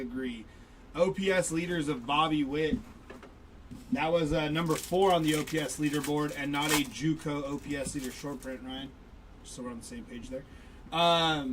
OPS leaders of Bobby Witt. That was number 4 on the OPS leaderboard and not a JUCO OPS leader short print, Ryan. Just so we're on the same page there.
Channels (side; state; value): both; identical; correlation 1.00